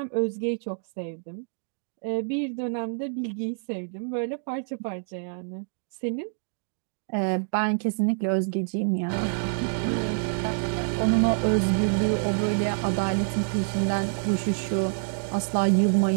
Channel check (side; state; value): left; silent; digital silence